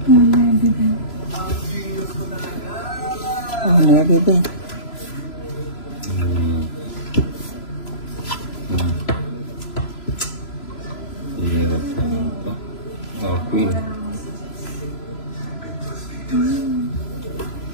Oh, nueve din. Hirap naman ito. Oh, queen.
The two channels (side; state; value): right; late; 3.0 ms